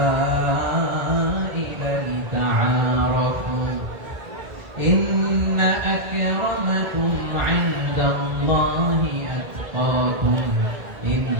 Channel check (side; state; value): left; late; 1.7 ms